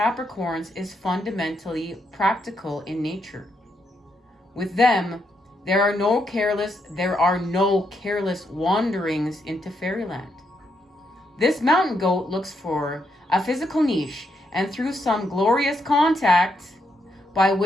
is fundamentally practical in nature. With them, there are no careless wanderings into fairyland. This mountain goat looks for a physical niche, and through some glorious contact by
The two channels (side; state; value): both; normal; correlation 0.79